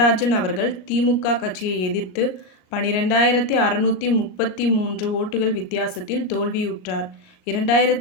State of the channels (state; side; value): late; right; 38 ms